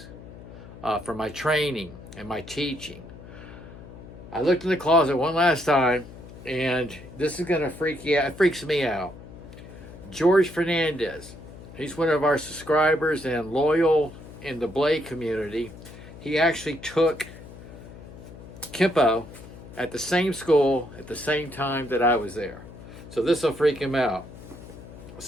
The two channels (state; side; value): noise; left; hum, 16 dB below the sound